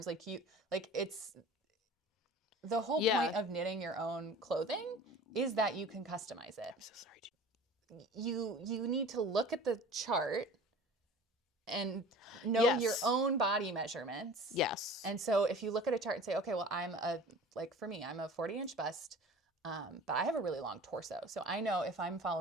It's the whole point of knitting your own clothing is that you can customize it. I'm so sorry. You need to look at the chart and know your own body measurements. Yes. And so if you look at a chart and say, okay, well, for me, I'm a 40-inch bust, but I have a really long torso. So I know if I'm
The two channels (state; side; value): normal; both; correlation 0.41